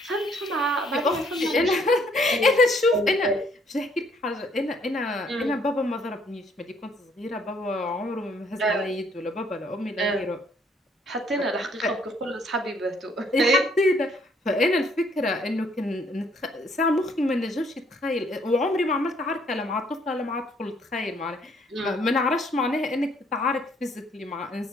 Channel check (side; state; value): both; normal; correlation 0.65